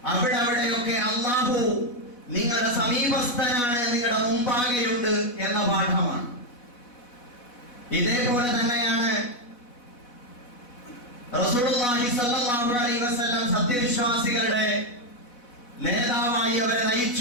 അവിടെയൊക്കെ അല്ലാഹു നിങ്ങളുടെ സമീപസ്ഥനാണ്, നിങ്ങളുടെ മുമ്പാകെയുണ്ട് എന്ന പാഠമാണ്. ഇതേപോലെ തന്നെയാണ് റസൂലുള്ളാഹി സ്വല്ലല്ലാഹു അലൈഹി വസല്ലം സത്യവിശ്വാസികളുടെ നേതാവായി അവരെ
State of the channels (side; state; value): right; late; 4.1 ms